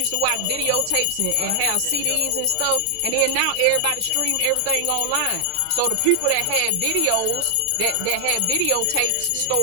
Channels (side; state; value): both; different; correlation 0.00